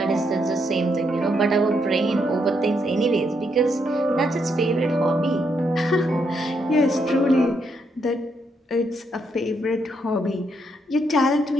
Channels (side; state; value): both; normal; correlation 0.77